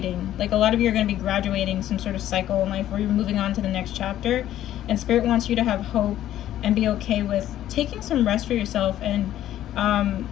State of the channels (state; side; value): quieter; right; 12.5 dB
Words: Like, a lot of you are going to be graduating some sort of cycle in life where you're moving on to the next chapter, and Spirit wants you to have hope and be okay with taking some rest for yourself, and